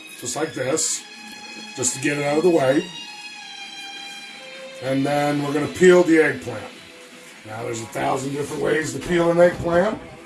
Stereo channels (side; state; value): both; identical; correlation 1.00